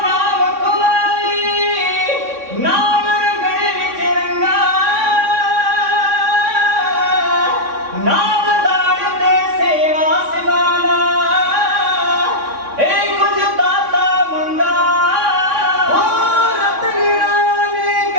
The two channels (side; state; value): left; late; 3.6 ms